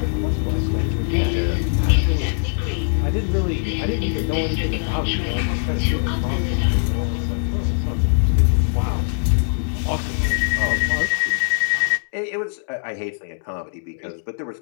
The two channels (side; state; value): right; silent; digital silence